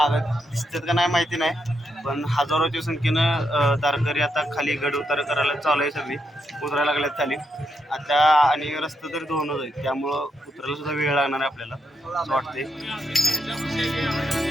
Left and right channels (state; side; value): normal; both; correlation 0.81